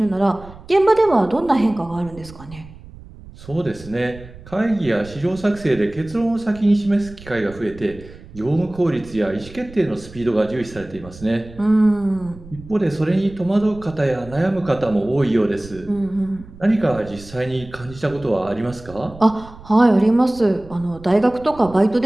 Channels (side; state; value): right; noise; rumble, 18 dB below the sound